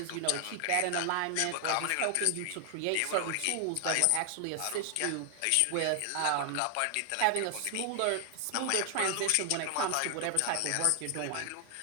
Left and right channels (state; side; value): different; both; correlation 0.00